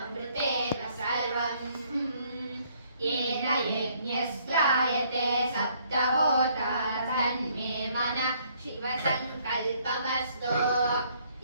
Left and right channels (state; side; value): inverted; both; correlation -0.66